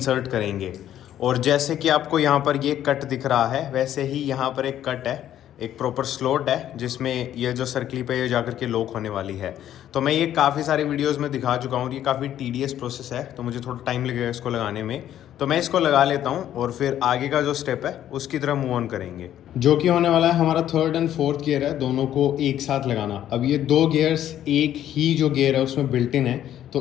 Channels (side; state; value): right; quieter; 11.4 dB